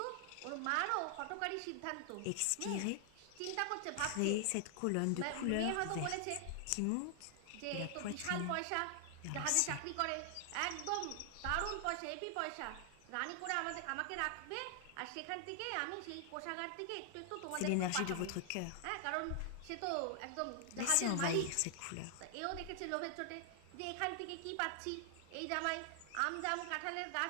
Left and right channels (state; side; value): different; both; correlation 0.00